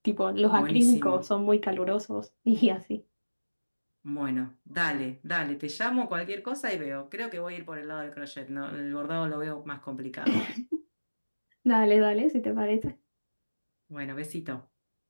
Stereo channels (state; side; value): inverted; both; correlation -1.00